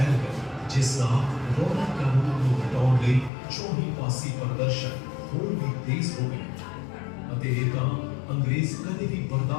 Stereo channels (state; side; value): drops out; right; at 3.3 s